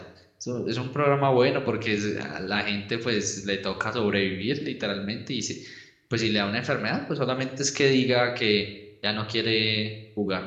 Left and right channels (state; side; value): identical; both; correlation 1.00